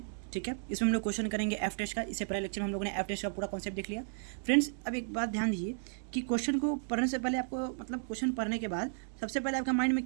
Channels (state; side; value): silent; left; digital silence